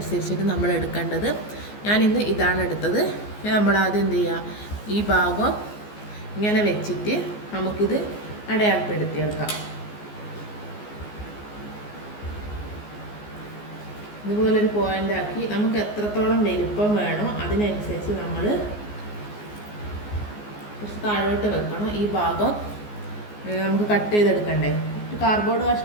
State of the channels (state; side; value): late; right; 14 ms